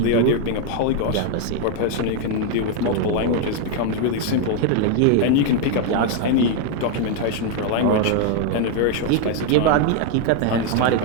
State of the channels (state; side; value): different; both; correlation 0.01